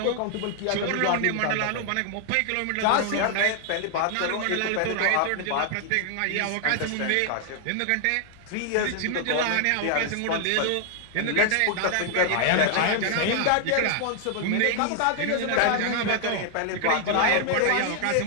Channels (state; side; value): different; both; correlation 0.00